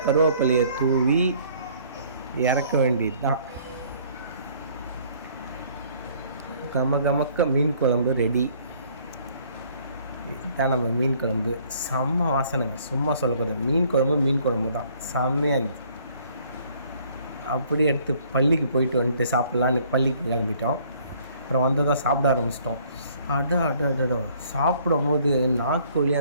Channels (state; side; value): inverted; both; correlation -0.60